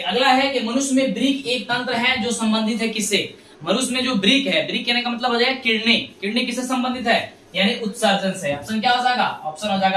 अगला है कि मनुष्य में ब्रिक एक तंत्र है जो संबंधित है किससे? मनुष्य में जो ब्रिक है, ब्रिक कहने का मतलब हो जाएगा किडनी। किडनी किससे संबंधित है? यानी उत्सर्जन से। ऑप्शन क्या हो जाएगा? ऑप्शन हो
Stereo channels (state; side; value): identical; both; correlation 1.00